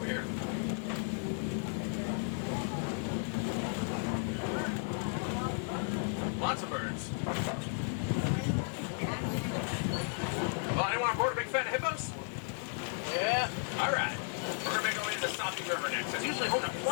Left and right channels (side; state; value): right; silent; 55 dB below the other